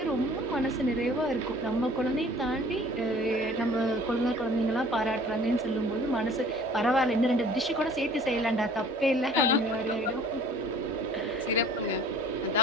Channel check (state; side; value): normal; both; correlation 0.49